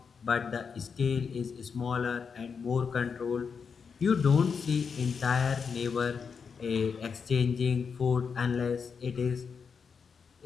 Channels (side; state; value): right; quieter; 6.0 dB